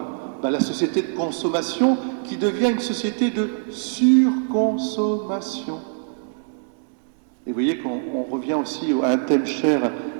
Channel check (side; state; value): left; silent; digital silence